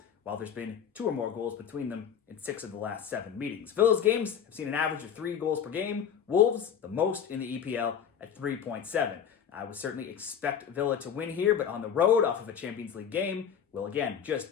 while there's been 2 or more goals between them in 6 of the last 7 meetings. Villa's games have seen an average of 3 goals per game. Wolves, the most in the EPL at 3.7. I would certainly expect Villa to win here, but on the road off of a Champions League game, we'll again just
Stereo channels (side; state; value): right; quieter; 8.1 dB